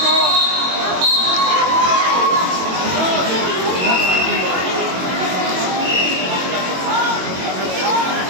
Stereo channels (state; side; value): late; left; 22 ms